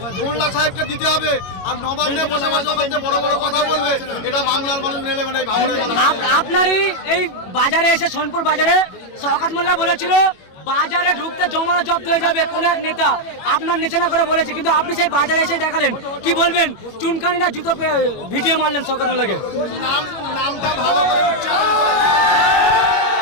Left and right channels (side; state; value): right; late; 21 ms